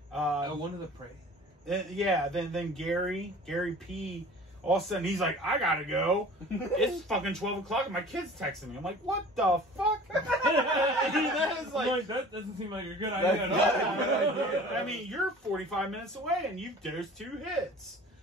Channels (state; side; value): normal; both; correlation 0.44